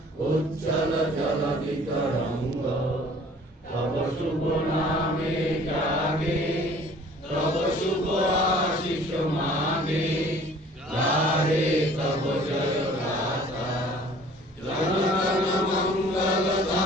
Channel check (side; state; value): both; normal; correlation 0.51